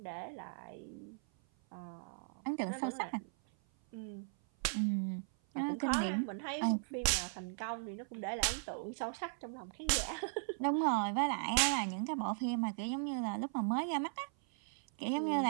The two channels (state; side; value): silent; left; 53 dB below the other